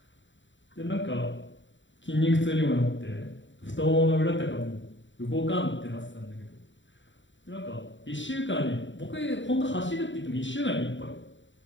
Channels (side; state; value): right; late; 0.54 ms